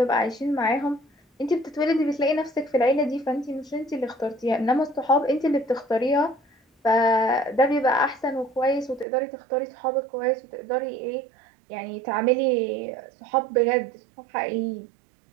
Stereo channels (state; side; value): drops out; left; at 9.1 s